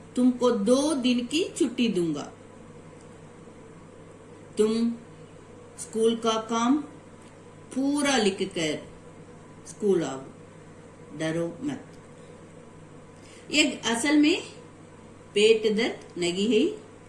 तुमको 2 दिन की छुट्टी दूंगा, तुम स्कूल का काम पूरा लिख कर स्कूल आओ, डरो मत। एक असल में पेट दर्द नहीं है,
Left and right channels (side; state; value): both; identical; correlation 1.00